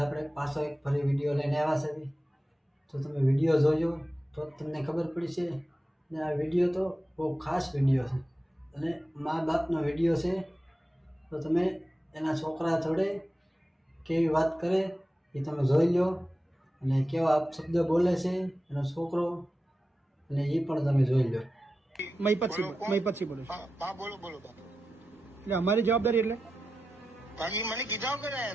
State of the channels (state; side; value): normal; both; correlation 0.92